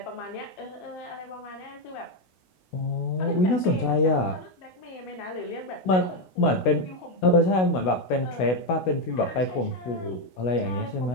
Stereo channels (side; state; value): right; late; 16 ms